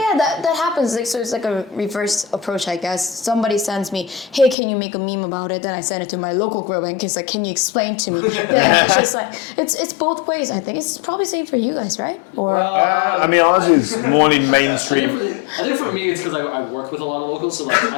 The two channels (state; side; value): drops out; right; at 4.5 s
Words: That happens. Like, so it's like a reverse approach, I guess. Somebody sends me, hey, can you make a meme about it? Then I send it to my local group and it's like, can you explain to me? Then it's just like, it's both ways, I think. It's probably same for you guys, right? Or, Well, I mean, ours is more in mainstream. I think for me it's because I work with a lot of locals, so like